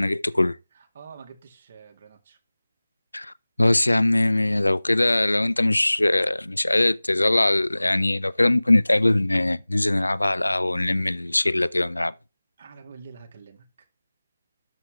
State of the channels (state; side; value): inverted; both; correlation -1.00